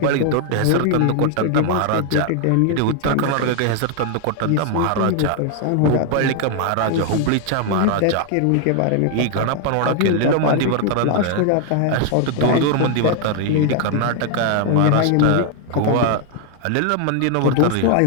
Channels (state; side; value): different; both; correlation 0.00